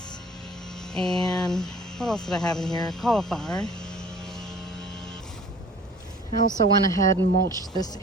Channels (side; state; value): both; normal; correlation 0.49